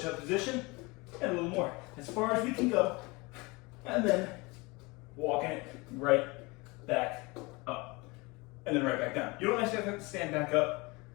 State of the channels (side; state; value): right; quieter; 25.5 dB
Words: position, and a little more. As far as we can go, and then walking it right back up, and then right back down. You don't necessarily have to stand back up.